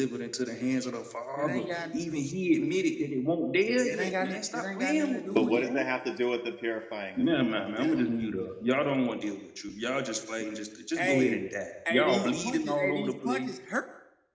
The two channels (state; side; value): identical; both; correlation 1.00